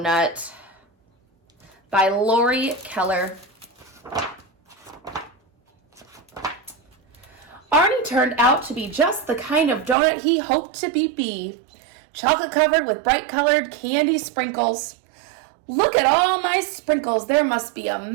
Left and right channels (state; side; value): drops out; left; at 10.0 s